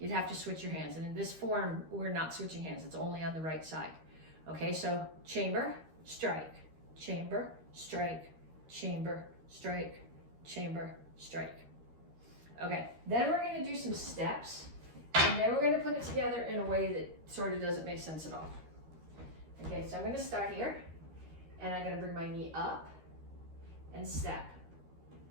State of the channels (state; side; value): late; left; 13 ms